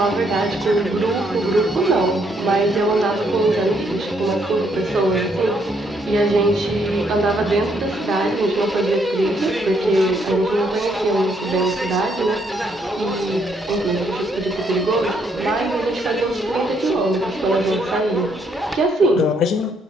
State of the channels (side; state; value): both; normal; correlation 0.72